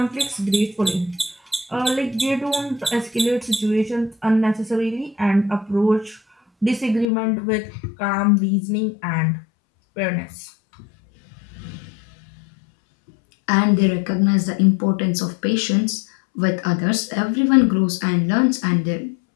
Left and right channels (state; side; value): drops out; right; at 7.1 s